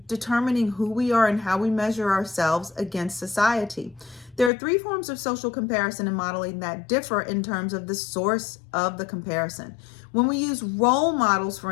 determining who we are and how we measure ourselves against society. There are three forms of social comparison and modeling that differ in terms of the source of the comparison. When we use role models, for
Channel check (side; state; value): right; drops out; at 4.5 s